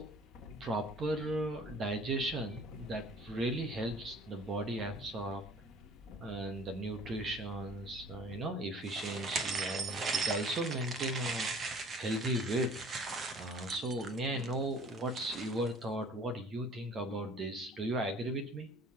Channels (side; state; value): both; normal; correlation 0.50